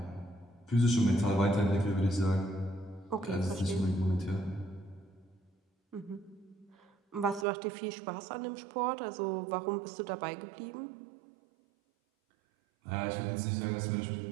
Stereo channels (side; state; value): left; drops out; at 7.5 s